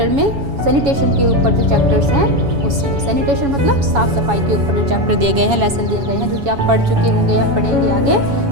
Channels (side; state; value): left; late; 7.2 ms